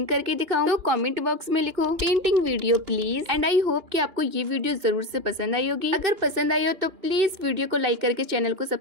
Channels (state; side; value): late; left; 2.9 ms